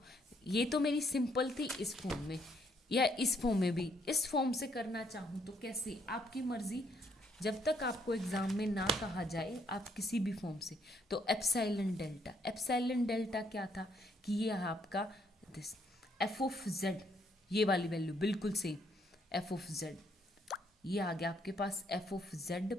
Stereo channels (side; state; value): both; normal; correlation 0.70